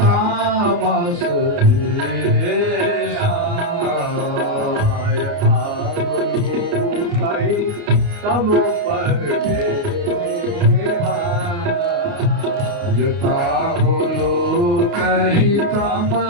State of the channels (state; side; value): late; left; 28 ms